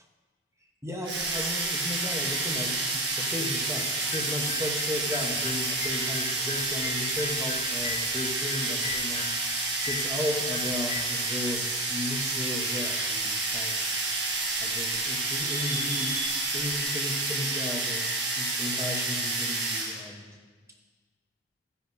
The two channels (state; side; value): normal; both; correlation 0.19